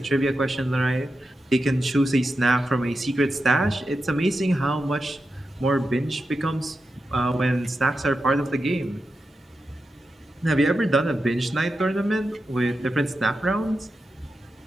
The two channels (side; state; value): both; normal; correlation 0.89